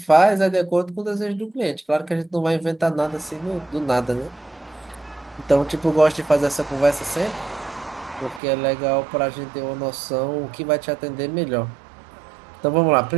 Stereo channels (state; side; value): drops out; left; at 8.4 s